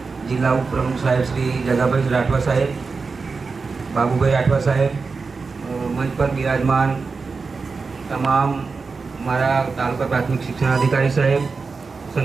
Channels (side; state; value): left; quieter; 4.5 dB